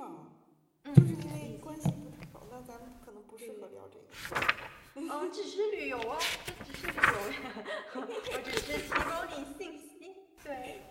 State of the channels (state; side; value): identical; both; correlation 1.00